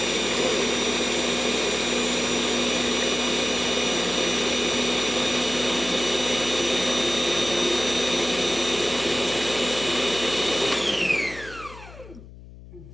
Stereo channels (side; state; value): left; noise; hum, 18 dB below the sound